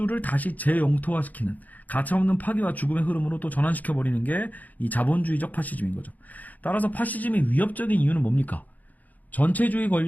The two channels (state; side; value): late; right; 0.080 ms